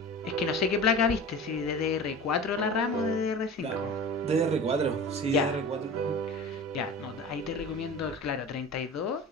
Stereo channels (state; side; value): normal; both; correlation 0.35